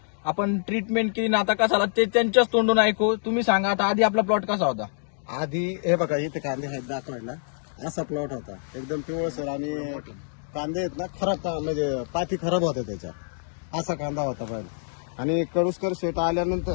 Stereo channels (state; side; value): silent; right; digital silence